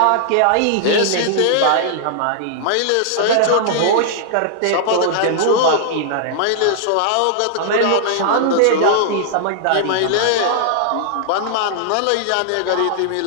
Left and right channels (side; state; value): both; different; correlation -0.01